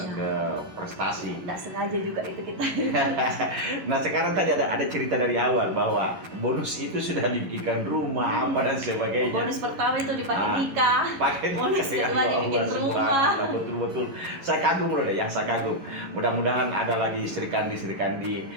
prestasi. Nggak sengaja juga itu kita. Nah sekarang tadi ada cerita dari awal bahwa bonus itu sudah dibikinkan rumah apa dan sebagainya. Bonus pertama itu dipakai nikah. Pakai Bonus nikah, kedua ya dibikin Allah, rumah. subhanallah, betul-betul. Saya kagum loh deh, yang saya kagum. Mudah-mudahan ada lagi Sri Kandi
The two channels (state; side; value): late; left; 11 ms